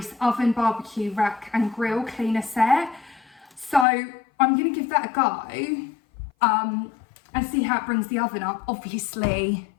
oven barbecue rack and grill cleaner set. So I'm gonna give that a go and see how it brings the oven up. Obviously,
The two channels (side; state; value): right; drops out; at 3.9 s